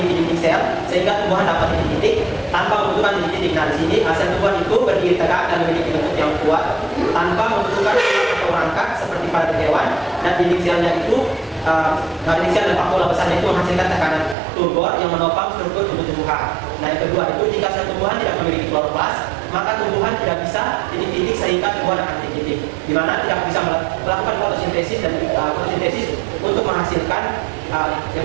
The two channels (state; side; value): drops out; left; at 14.4 s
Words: dinding sel sehingga tumbuhan dapat titik-titik tanpa membutuhkan titik-titik. Nah, di sini sel tumbuhan itu berdiri tegak dan memiliki bentuk yang kuat tanpa membutuhkan tulang atau rangka seperti pada hewan, dan dinding selnya itu dinding sel dan vakuola besarnya itu menghasilkan tekanan turbor yang menopang struktur tumbuh-tumbuhan. Nah, yang kedua itu jika sel tumbuhan tidak memiliki kloroplas, maka tumbuhan tidak bisa titik-titik sehingga tumbuhan akan titik-titik, di mana tidak bisa melakukan fotosintesis dan fotosintesis untuk menghasilkan